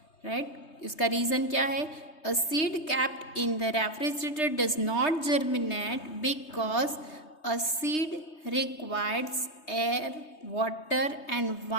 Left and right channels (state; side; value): late; right; 3.2 ms